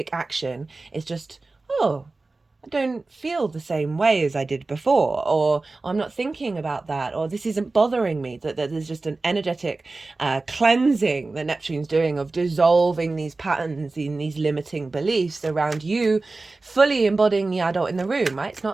action. It's just, oh, I don't feel the same way as I did before, or I'm not thinking about that, or this isn't bothering me. That there's just an energetic cleansing that Neptune's doing of dissolving these patterns in these limiting beliefs around you, fully embodying the adult in the room, right? It's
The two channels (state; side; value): quieter; left; 3.4 dB